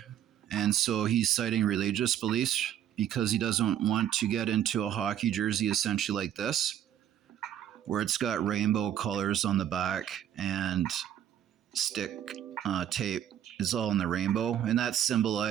and so he's citing religious beliefs because he doesn't want to get into a hockey jersey essentially like this, where it's got rainbow colors on the back and stick tape is all in the rainbow, and that's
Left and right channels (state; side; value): quieter; left; 10.6 dB